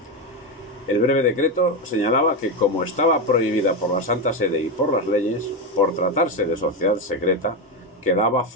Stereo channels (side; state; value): both; normal; correlation 0.11